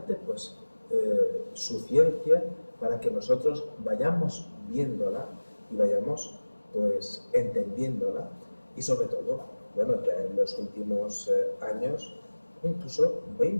pues, su ciencia para que nosotros vayamos viéndola y vayamos pues, entendiéndola, y sobre todo, bueno, ya en los últimos años, incluso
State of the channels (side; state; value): both; inverted; correlation -1.00